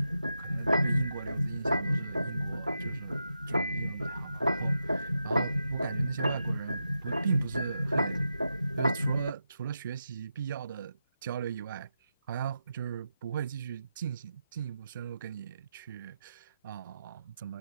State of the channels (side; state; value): both; inverted; correlation -0.87